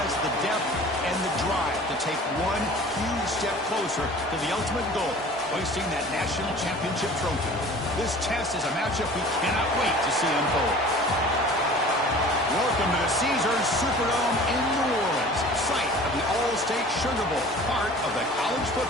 the depth and the drive to take one huge step closer to the ultimate goal, hoisting that national championship trophy. This test is a matchup we cannot wait to see unfold. Welcome to the Caesars Superdome in New Orleans, site of the All-State Sugar Bowl, part of the college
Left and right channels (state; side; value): normal; both; correlation 0.44